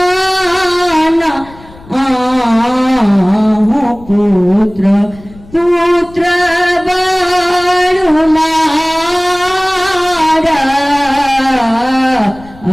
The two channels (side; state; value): left; noise; rumble, 22 dB below the sound